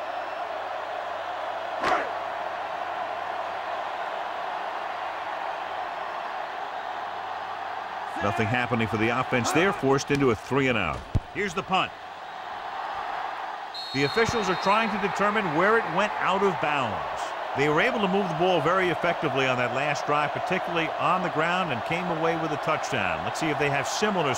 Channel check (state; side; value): identical; both; correlation 1.00